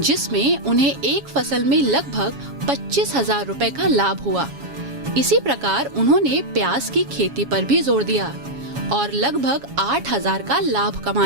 उन्हें एक फसल में लगभग 25,000 रुपए का लाभ हुआ। इसी प्रकार उन्होंने प्याज की खेती पर भी जोर दिया और लगभग 8,000 का लाभ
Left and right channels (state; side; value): late; left; 7.2 ms